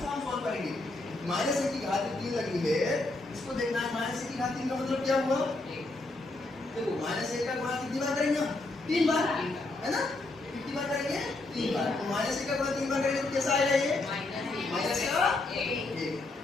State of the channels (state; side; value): quieter; right; 3.0 dB